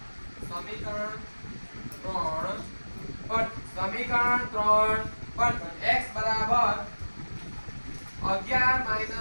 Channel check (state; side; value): inverted; both; correlation -1.00